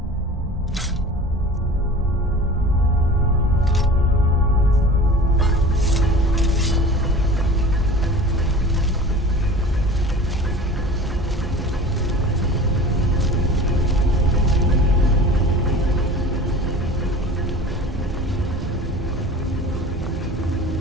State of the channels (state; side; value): normal; both; correlation 0.39